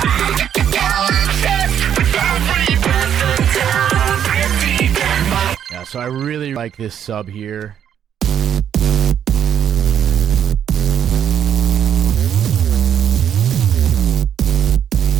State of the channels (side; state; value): left; quieter; 9.2 dB